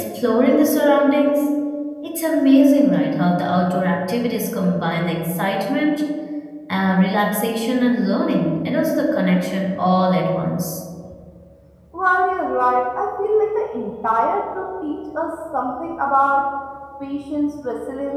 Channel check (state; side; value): identical; both; correlation 1.00